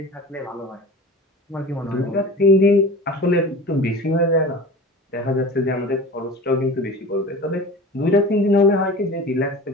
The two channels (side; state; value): both; normal; correlation 0.36